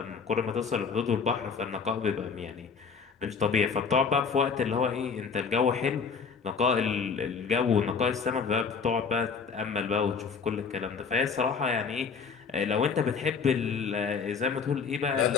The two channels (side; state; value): right; quieter; 5.6 dB